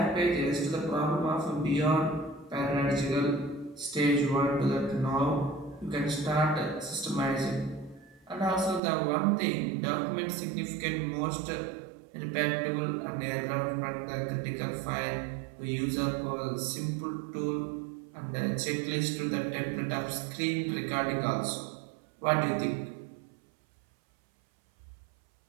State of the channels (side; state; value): left; drops out; at 8.8 s